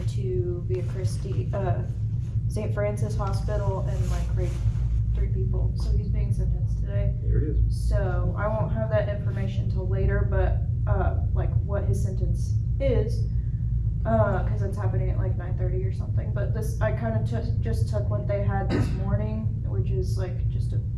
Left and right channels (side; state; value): both; identical; correlation 1.00